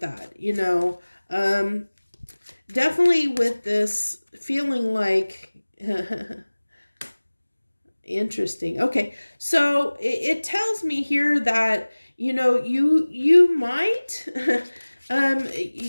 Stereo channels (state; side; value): inverted; both; correlation -1.00